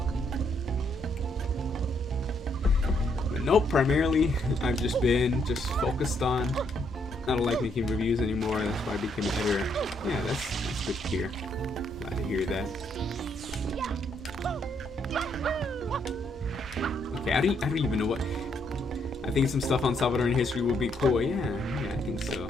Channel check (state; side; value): normal; both; correlation 0.73